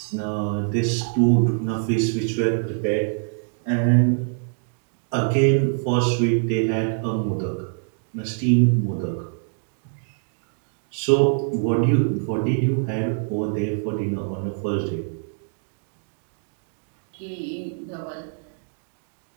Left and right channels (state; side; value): silent; left; 62 dB below the other